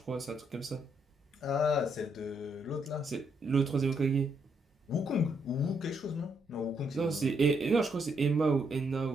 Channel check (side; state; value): both; normal; correlation 0.75